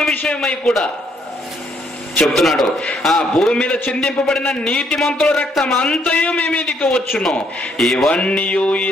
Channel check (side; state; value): both; normal; correlation 0.70